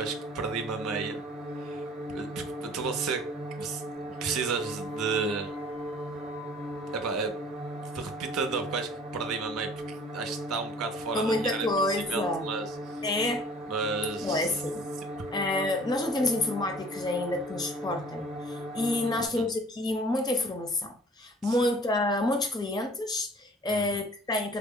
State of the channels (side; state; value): both; normal; correlation 0.50